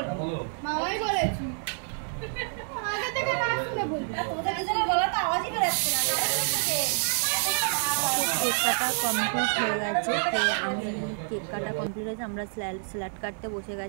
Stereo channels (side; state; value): left; silent; 59 dB below the other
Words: মামাই বলেছি আগে থেকে না শুনে বলবি, তোদের কিছু বলা তো আওয়াজই বেরোচ্ছে না। কেক কাটা কমপ্লিট হয়ে গেছে, কেক কাটা কমপ্লিট হয়েছে, আমরা স্যালাড কাটতে বসে